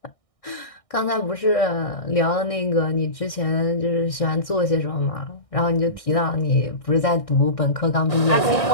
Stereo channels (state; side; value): late; right; 1.6 ms